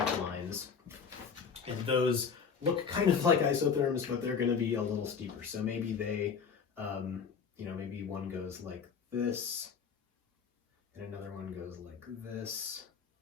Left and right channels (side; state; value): right; quieter; 6.2 dB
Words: lines. And those look kind of like isotherms, but they're going to be a little steeper. So maybe they, maybe one goes like this, and another one goes like this,